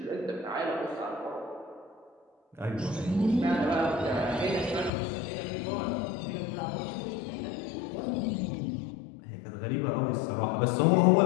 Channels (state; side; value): drops out; right; at 4.9 s